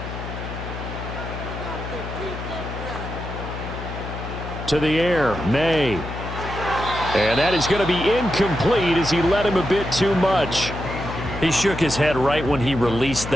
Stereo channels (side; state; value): left; noise; hum, 8 dB below the sound